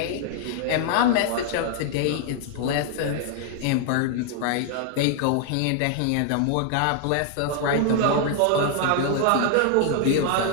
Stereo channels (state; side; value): different; both; correlation 0.00